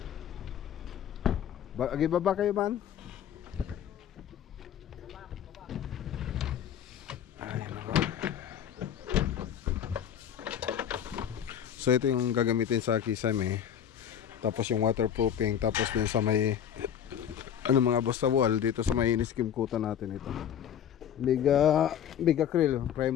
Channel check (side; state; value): right; quieter; 9.3 dB